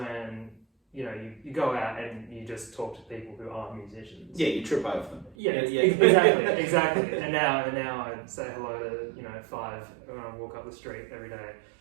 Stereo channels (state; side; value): drops out; left; at 5.4 s